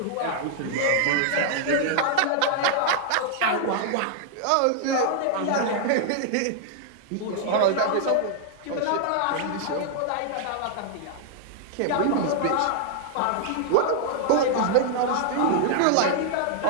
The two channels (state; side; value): different; both; correlation -0.01